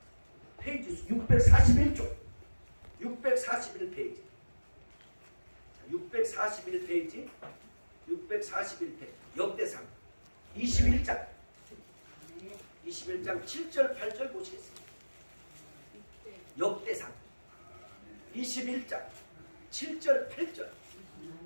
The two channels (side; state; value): both; inverted; correlation -1.00